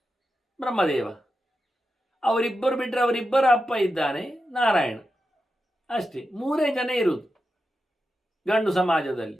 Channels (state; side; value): normal; both; correlation 0.89